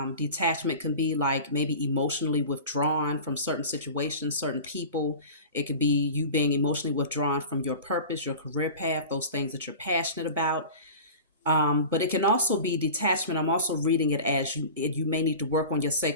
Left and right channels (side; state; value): both; inverted; correlation -0.36